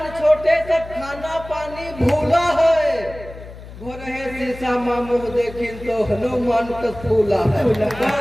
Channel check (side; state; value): left; noise; hum, 15 dB below the sound